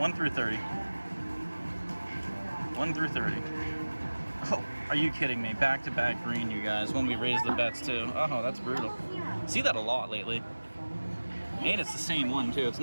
through 30. 1 through 30. Oh, are you kidding me? Back-to-back green, you guys, when we raise the bets too. Oh, that's brutal. See that a lot lately. And it's the same one too. It's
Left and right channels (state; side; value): inverted; both; correlation -1.00